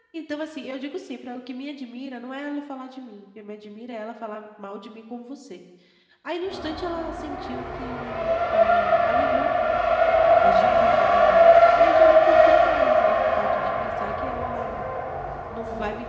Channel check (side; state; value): both; identical; correlation 1.00